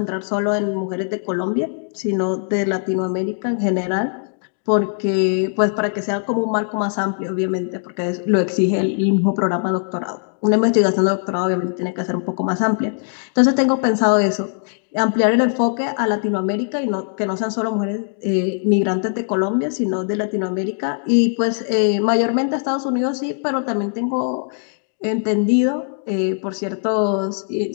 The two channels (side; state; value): right; silent; 58 dB below the other